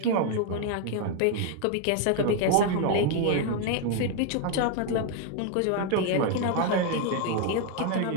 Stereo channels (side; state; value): both; different; correlation 0.00